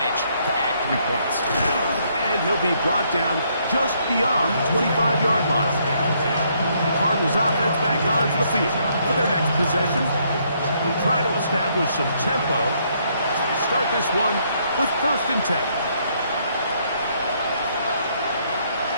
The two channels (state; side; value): inverted; both; correlation -0.71